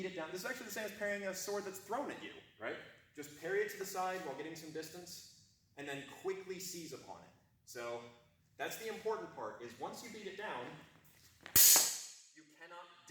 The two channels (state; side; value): identical; both; correlation 1.00